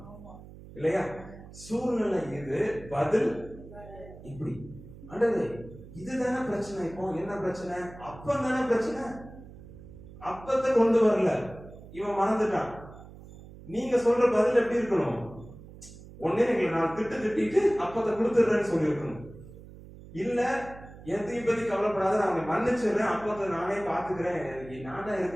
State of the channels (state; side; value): noise; right; hum, 17 dB below the sound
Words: இல்லையா? சூழ்நிலை இது, பதில் இப்படி. ஆண்டவரே இதுதானே பிரச்சனை. இப்போ என்ன பிரச்சனை? அப்பம் தானே பிரச்சனை. அப்பத்தை கொண்டு வரல, இவன் மறந்துட்டான். நீங்க சொல்ற பதில் எப்படி இருக்கணும்? ஒன்னே எங்களை நான் திட்டிட்டு அப்பத்தை கொடுத்துடுறேன்னு சொல்லி இருக்கணும். இல்ல எதையும் பத்தி கவலைப்படாத, நான் அவனை மன்னிச்சிடுறேன், அப்பத்தை நானே பாத்துக்கிறேன், நான் தான்